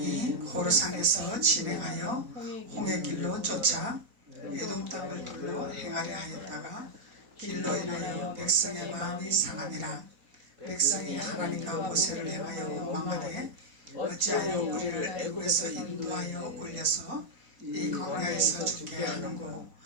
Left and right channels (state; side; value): late; left; 4.1 ms